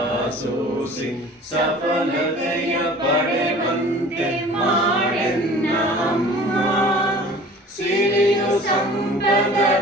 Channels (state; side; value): normal; both; correlation 0.45